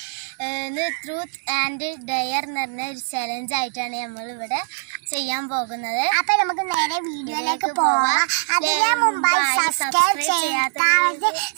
ട്രൂത്ത് ആൻഡ് ഡെയർ എന്ന് പറഞ്ഞ ഒരു ചലഞ്ച് ആയിട്ടാണ് നമ്മൾ ഇവിടെ ചെയ്യാൻ പോകുന്നത്. അപ്പൊ നമുക്ക് നേരെ വീഡിയോയിലേക്ക് പോവാം. അതിന് മുമ്പായി സബ്സ്ക്രൈബ്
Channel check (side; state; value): left; silent; 64 dB below the other